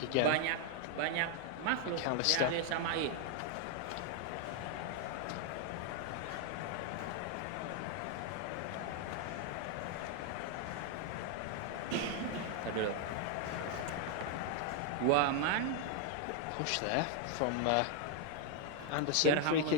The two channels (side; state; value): both; different; correlation 0.00